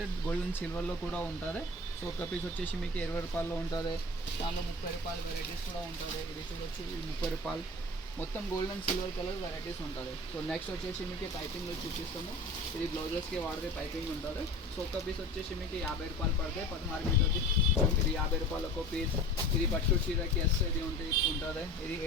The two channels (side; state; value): both; normal; correlation 0.38